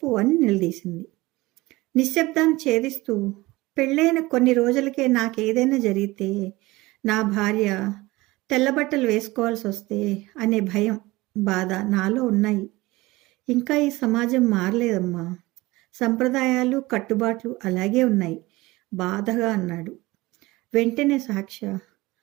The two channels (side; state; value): left; quieter; 20.5 dB